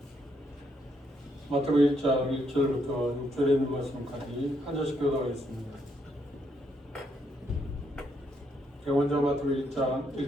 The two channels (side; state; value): both; normal; correlation 0.75